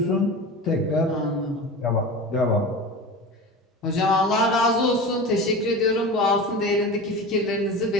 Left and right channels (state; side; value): normal; both; correlation 0.30